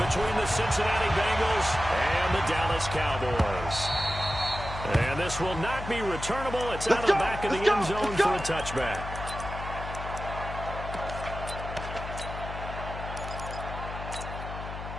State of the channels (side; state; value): left; noise; hum, 8 dB below the sound